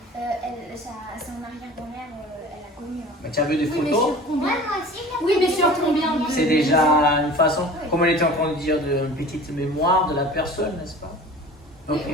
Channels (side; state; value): both; normal; correlation 0.41